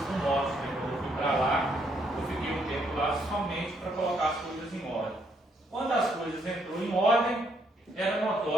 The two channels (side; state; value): both; normal; correlation 0.72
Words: do Norte. Quando eu fui para lá, eu fiquei um tempo lá somente para colocar as coisas em ordem. Quando as coisas entrou em ordem, era